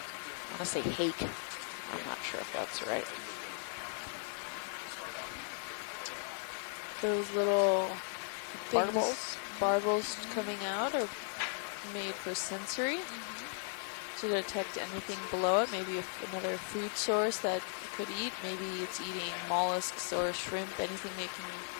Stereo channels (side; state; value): right; silent; 53 dB below the other